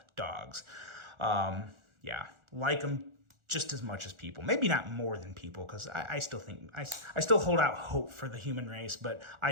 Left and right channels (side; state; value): left; late; 1.4 ms